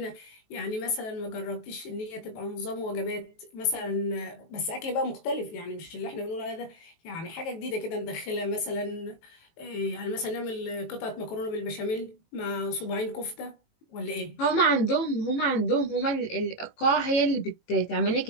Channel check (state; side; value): late; right; 18 ms